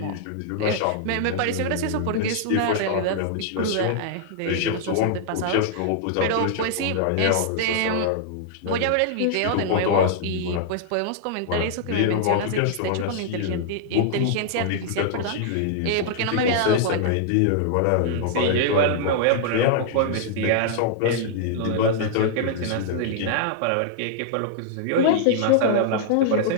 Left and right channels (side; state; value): both; different; correlation -0.01